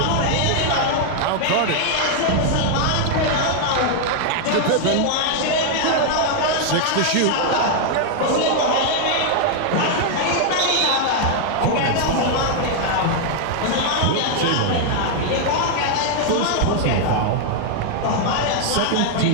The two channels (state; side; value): different; both; correlation 0.00